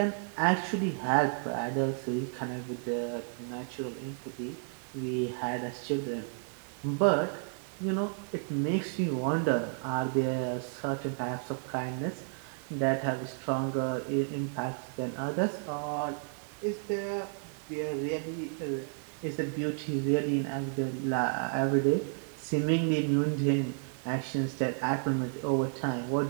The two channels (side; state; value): left; silent; 56 dB below the other